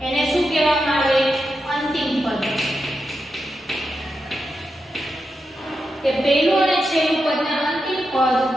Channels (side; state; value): both; normal; correlation 0.87